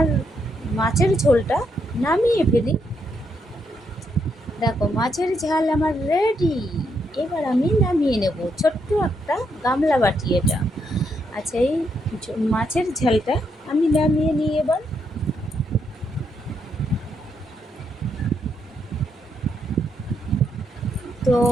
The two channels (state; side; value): normal; both; correlation 0.78